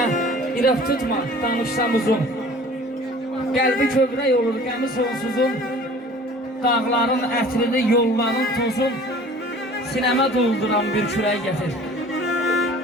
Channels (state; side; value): normal; both; correlation 0.47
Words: irəf tutma, danışsam uzun. Qəlbi kövrək olur, qəmi sonsuzun. Dağların ətrini, yolların tozun. Sinəmə dolduran bir kürək gətir.